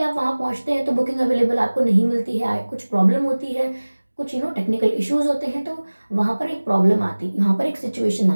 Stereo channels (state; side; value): inverted; both; correlation -1.00